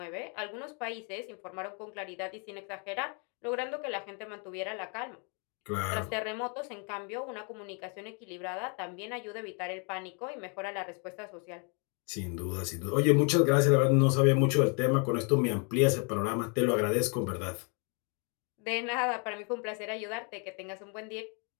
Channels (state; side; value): quieter; right; 36.6 dB